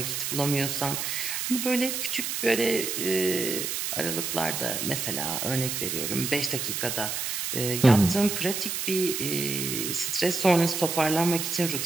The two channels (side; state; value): right; noise; hiss, 2 dB below the sound